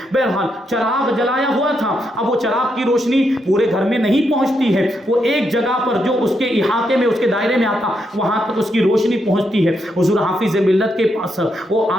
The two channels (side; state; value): both; normal; correlation 0.80